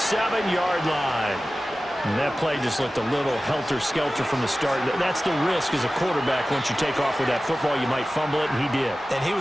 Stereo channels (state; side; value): normal; both; correlation 0.96